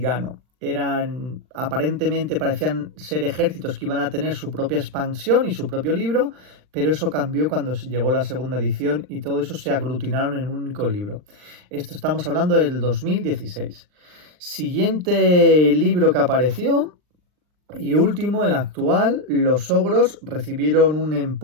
Aparentemente parecían ser ejércitos que iban a tener su propia expansión y su propio libro, pero eso cambió cuando llegó la segunda edición y todo eso se aglutinaron en un único libro. Esto estamos hablando del 2016. Siguiente libro que apareció y último, el actual, los ogros recibieron un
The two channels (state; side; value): late; left; 39 ms